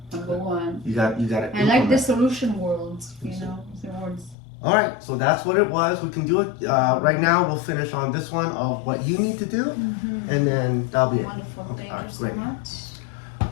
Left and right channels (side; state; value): right; drops out; at 4.4 s